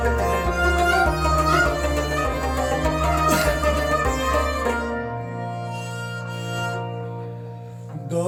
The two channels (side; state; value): both; identical; correlation 1.00